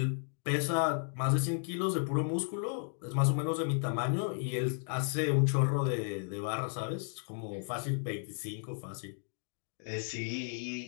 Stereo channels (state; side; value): silent; right; 55 dB below the other